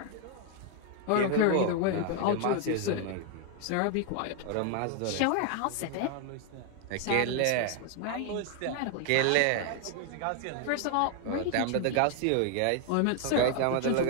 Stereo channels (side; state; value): both; different; correlation 0.00